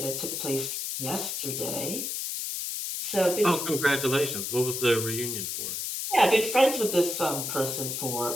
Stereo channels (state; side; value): noise; left; hiss, 3 dB below the sound